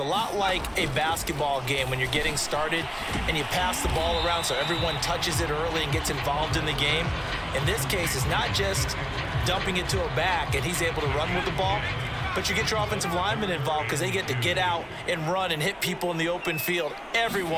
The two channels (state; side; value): identical; both; correlation 1.00